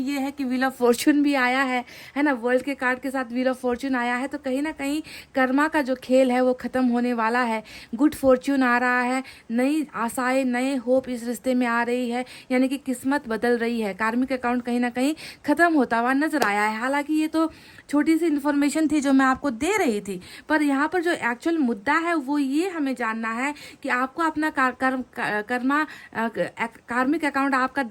है कि व्हील ऑफ फॉर्चून भी आया है ना। वर्ल्ड के कार्ड के साथ व्हील ऑफ फॉर्च्यून आया है, तो कहीं ना कहीं कर्मा का जो खेल है वो ख़त्म होने वाला है। गुड फॉर्च्यून आ रहा है, नई आशाएं, नए होप इस रिश्ते में आ रही है, यानी कि किस्मत बदल रही है। कार्मिक अकाउंट कहीं ना कहीं ख़त्म होता हुआ नजर आया है। हालांकि ये तो छोटी सी इन्फॉर्मेशन थी जो मैं आपको दे रही थी, पर यहाँ पर जो एक्चुअल मुद्दा है वो ये हमें जानना है कि आपको अपना कार्मिक अकाउंट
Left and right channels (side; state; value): both; identical; correlation 1.00